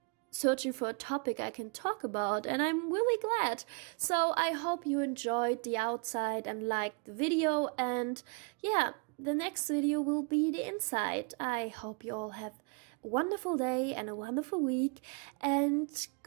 searching for a topic I can talk about, and I'm really glad. So I hope you enjoyed the outside and liked the video, and yeah, the next video will be the inside. I hope you all have a wonderful day and a wonderful week, and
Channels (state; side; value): quieter; left; 33.2 dB